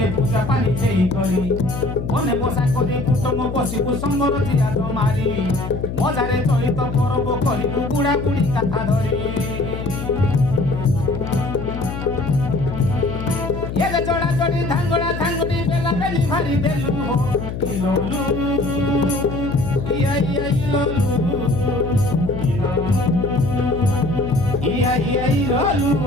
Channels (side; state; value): left; noise; hum, 6 dB below the sound